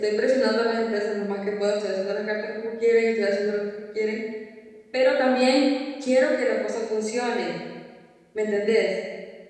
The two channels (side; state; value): both; identical; correlation 1.00